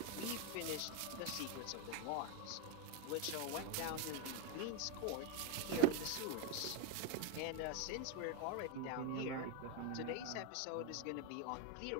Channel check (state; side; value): different; both; correlation 0.02